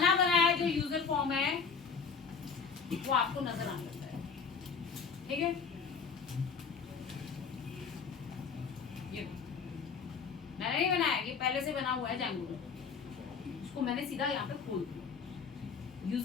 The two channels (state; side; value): quieter; right; 5.7 dB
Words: बनाया जो यूजर फॉर्म है वो आपको नजर आने लगता है, ठीक है। ये मैंने नहीं बनाया, ये पहले से बना हुआ है Django में। उसको मैंने सीधा यहाँ पे खोल दिया।